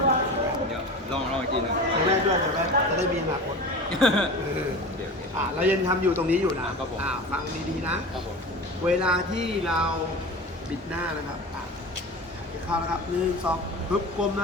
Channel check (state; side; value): normal; both; correlation 0.32